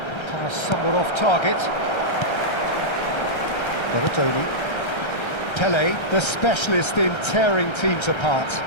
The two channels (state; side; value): late; right; 1.3 ms